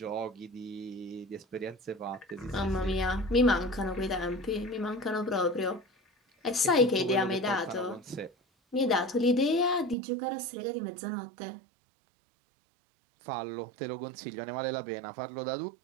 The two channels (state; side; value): drops out; left; at 10.0 s